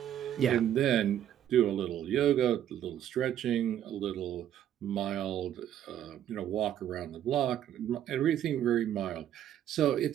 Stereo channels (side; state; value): left; quieter; 10.8 dB